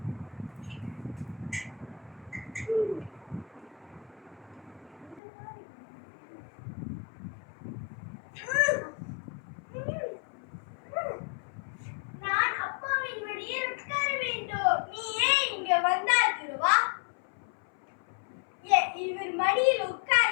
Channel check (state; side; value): drops out; right; at 5.2 s